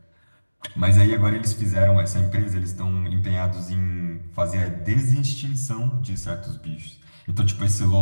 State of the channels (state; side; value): inverted; both; correlation -1.00